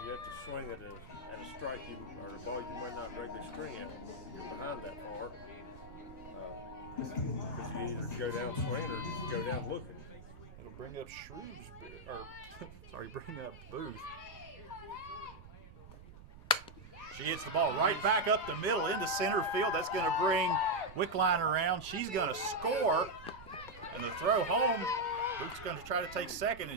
You have to swing at a strike or a ball you might not regularly string at when you're behind that far. Because you either go down swinging or go down looking. It'll bring up Shrewsbury, or sorry, bring up Booth. She hits the ball right back up the middle into center field. That's going to bring Wickline around. She's going to score, and the throw home. Booth's going to try to take second,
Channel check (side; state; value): right; noise; rumble, 17 dB below the sound